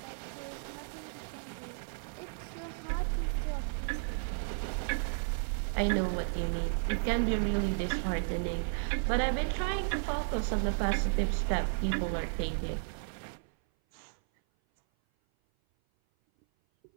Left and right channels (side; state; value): left; silent; 55 dB below the other